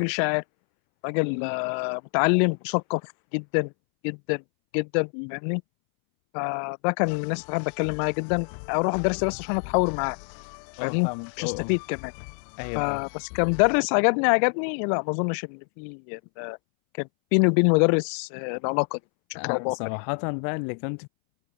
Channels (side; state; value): right; silent; 61 dB below the other